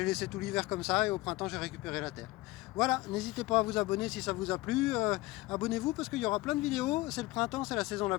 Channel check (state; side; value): quieter; right; 19.6 dB